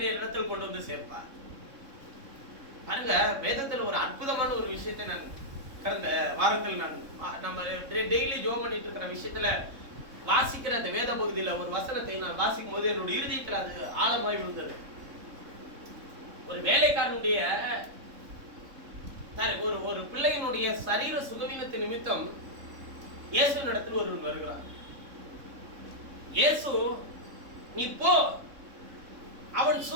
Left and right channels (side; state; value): left; late; 3.6 ms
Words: இடத்தில் கொண்டு வந்து சேர்ப்பார். பாருங்க, வேதத்துல ஒரு அற்புதமான ஒரு விஷயத்தை நான் கடந்த வாரத்தில் நம்ம டெய்லி ஜோம் பண்ணிட்டு இருக்கிற விஷயத்துல வாசிக்கிற அந்த வேத பகுதியில ஒரு வசனத்தை நான் வாசிக்கும் போது என்னுடைய இருதயத்தில் அது ஆழமாய் விழுந்தது. ஒரு வேலைக்காரனுடைய ஒரு பிள்ளையினுடைய சரீர சுகவீனத்தின் நிமித்தம் இயேசு இடத்தில் ஒருவன் வருகிறான். இயேசு நீ போ, அவன்